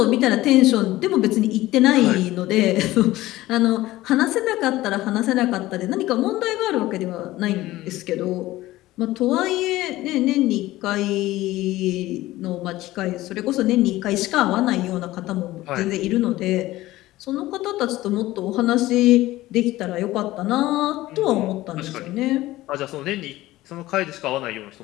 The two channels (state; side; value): quieter; right; 17.0 dB